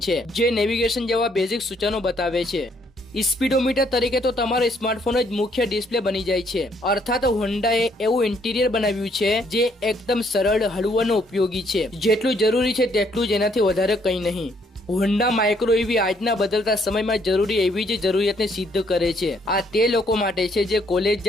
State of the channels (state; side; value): normal; both; correlation 0.68